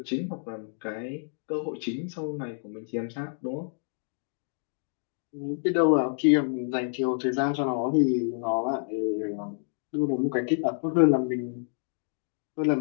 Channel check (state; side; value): silent; right; digital silence